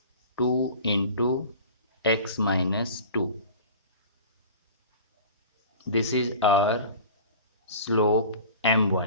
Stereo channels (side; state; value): both; inverted; correlation -0.40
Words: 2 into x minus 2. This is our slope